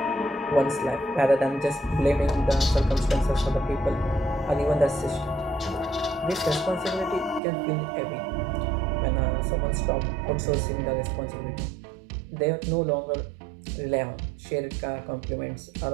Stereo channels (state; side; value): drops out; left; at 7.4 s